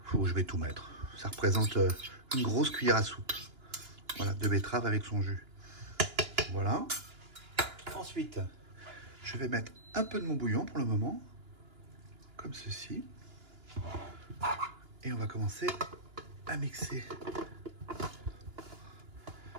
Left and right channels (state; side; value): late; left; 2.9 ms